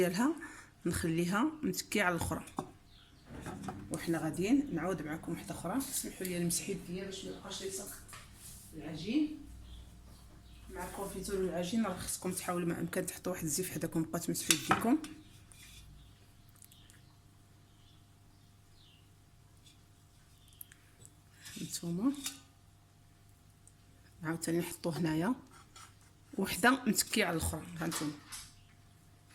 نخليها متكيه على الاخرى، وحنا غاديين نعاود معكم وحده اخرى. سمحوا لي نمسح يديا باش ما يبقاش يلصق العجين مع الكونفيتور والعجين. راه خصكم تحاولوا ما امكن تحطوا واحد الزيت حداكم بقاو تمسحوا يديكم. نتوما عاوتاني نحطوه هنايا وحده متكيه على الاخرى. هانتوما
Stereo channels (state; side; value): identical; both; correlation 1.00